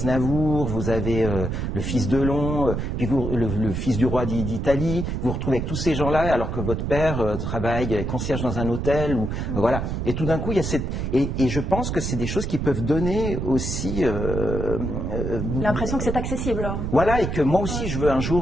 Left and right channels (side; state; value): right; noise; rumble, 2 dB below the sound